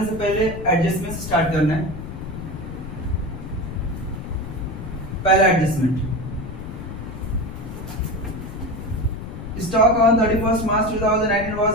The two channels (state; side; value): noise; left; rumble, 9 dB below the sound